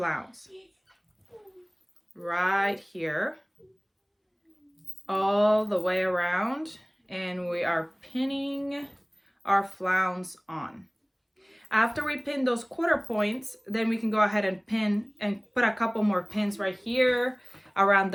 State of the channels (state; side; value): identical; both; correlation 1.00